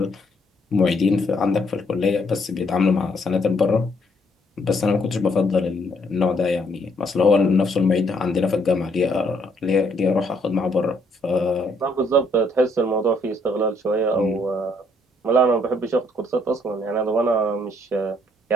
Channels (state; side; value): normal; both; correlation 0.69